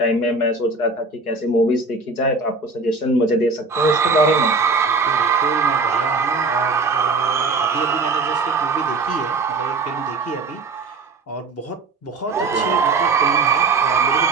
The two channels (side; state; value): left; quieter; 3.8 dB